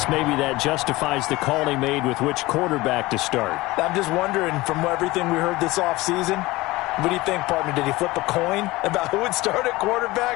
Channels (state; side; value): quieter; right; 20.1 dB